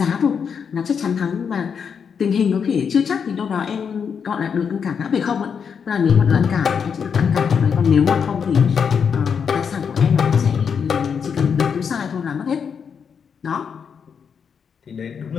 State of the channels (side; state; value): right; quieter; 6.7 dB